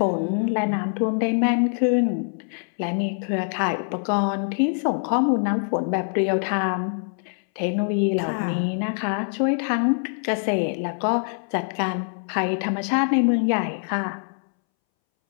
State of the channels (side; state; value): right; silent; 63 dB below the other